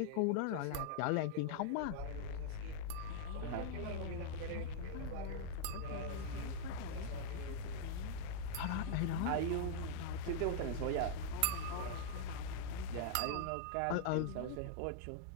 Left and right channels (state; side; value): different; both; correlation -0.01